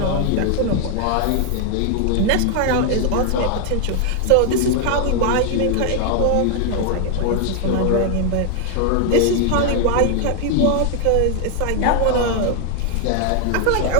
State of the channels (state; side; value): different; both; correlation 0.00